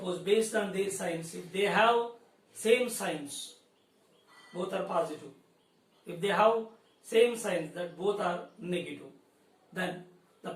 based on their signs, if they have same signs, both are positive. If they have same signs that both are negative, then the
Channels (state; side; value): identical; both; correlation 1.00